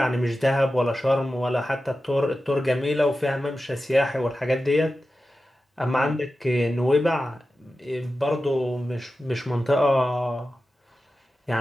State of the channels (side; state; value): both; normal; correlation 0.93